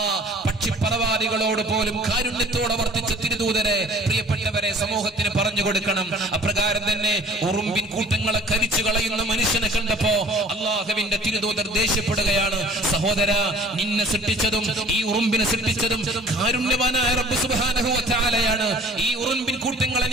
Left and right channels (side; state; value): both; normal; correlation 0.49